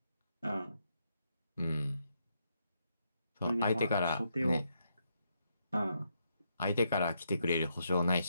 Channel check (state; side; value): inverted; both; correlation -0.78